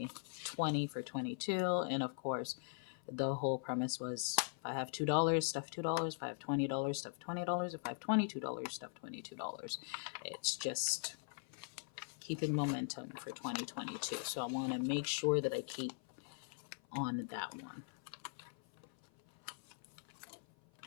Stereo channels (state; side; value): silent; right; 50 dB below the other